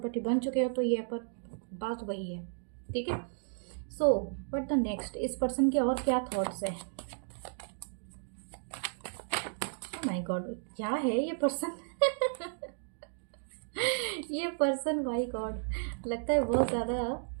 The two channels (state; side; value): silent; left; digital silence